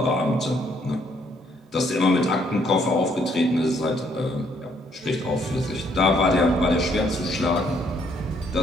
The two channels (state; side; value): normal; both; correlation 0.68